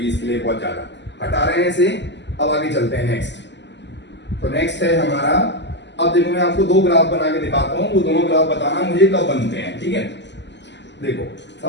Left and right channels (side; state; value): right; late; 0.51 ms